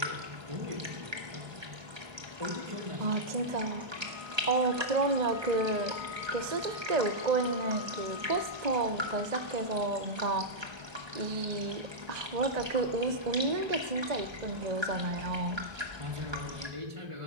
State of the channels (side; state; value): left; late; 1.2 ms